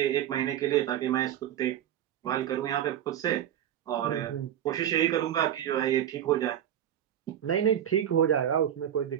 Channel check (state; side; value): quieter; left; 10.6 dB